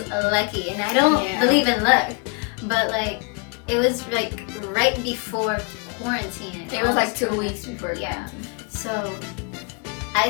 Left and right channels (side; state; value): right; quieter; 32.1 dB